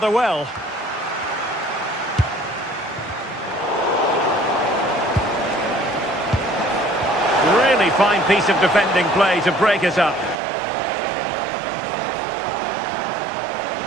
well. Really fine piece of defending play to break it up.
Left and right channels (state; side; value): drops out; left; at 10.4 s